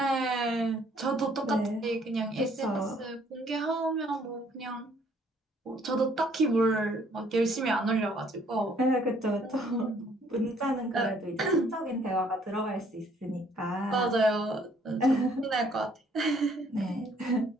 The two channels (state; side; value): normal; both; correlation 0.63